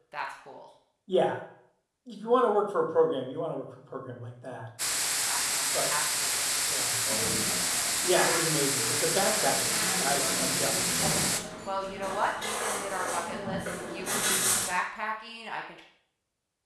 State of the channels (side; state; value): both; identical; correlation 1.00